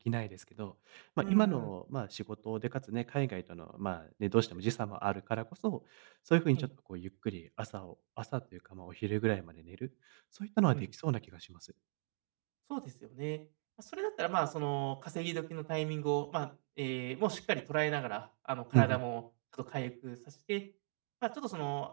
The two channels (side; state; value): left; silent; 52 dB below the other